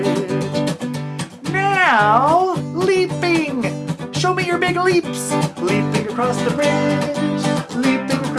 Now leaping. Show me your big leaps. Leaping across the bridge, leaping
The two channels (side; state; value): both; identical; correlation 1.00